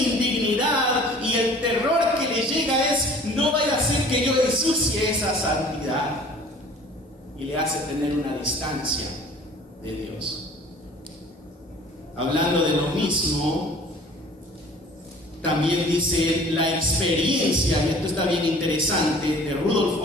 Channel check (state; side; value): normal; both; correlation 0.48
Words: y el terror que le llega es, no vaya a ser que yo ensucie esa santidad, y le hace tener una distancia de Dios. Hablando de lo mismo, también dice la experiencia, y esto está bien interesante, de Rudolf